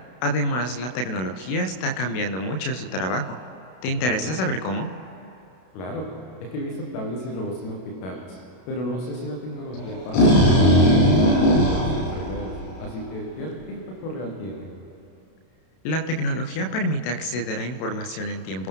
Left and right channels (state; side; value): late; right; 32 ms